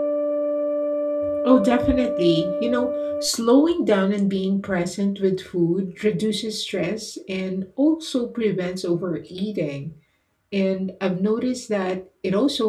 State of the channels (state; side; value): identical; both; correlation 1.00